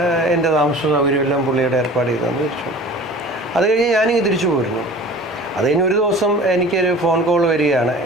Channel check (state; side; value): normal; both; correlation 0.43